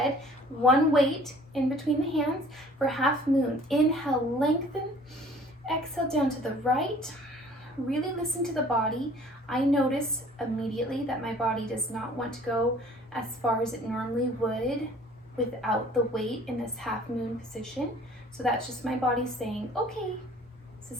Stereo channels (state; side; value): normal; both; correlation 0.52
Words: 1 weight in between the hands for half moon. Inhale, lengthen. Exhale down to the right. Really listen to the body. I notice immediately that my body does not want to go as far as it normally would without the weight in this half moon position. So that's just my body saying, okay, this